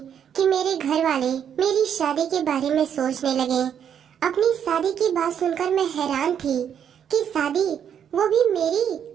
कि मेरे घर वाले मेरी शादी के बारे में सोचने लगे। अपनी शादी की बात सुनकर मैं हैरान थी कि शादी, वो भी मेरी,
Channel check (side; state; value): left; quieter; 8.6 dB